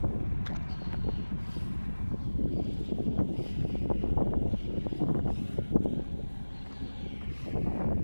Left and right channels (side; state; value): both; inverted; correlation -1.00